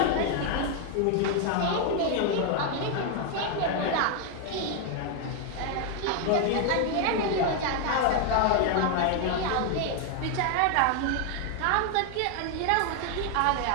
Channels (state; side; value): different; both; correlation 0.01